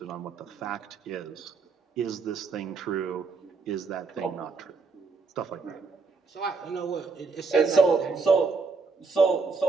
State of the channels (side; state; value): left; quieter; 4.5 dB